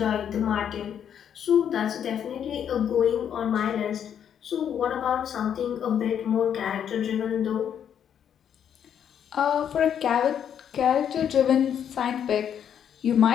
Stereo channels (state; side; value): quieter; right; 8.8 dB